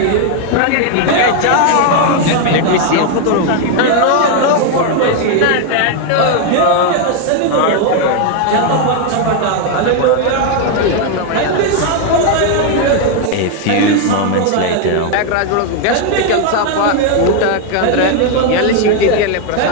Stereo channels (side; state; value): both; different; correlation 0.01